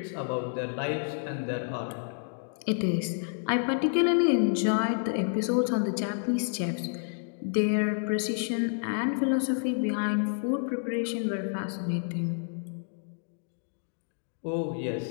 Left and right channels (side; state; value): right; silent; digital silence